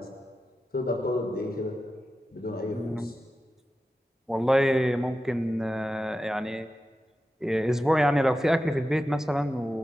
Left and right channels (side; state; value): both; normal; correlation 0.92